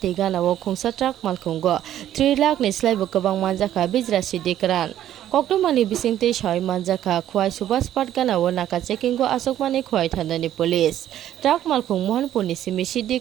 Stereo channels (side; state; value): left; quieter; 11.8 dB